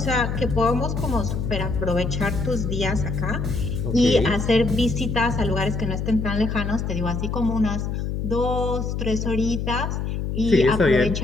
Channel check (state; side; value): noise; left; hum, 2 dB below the sound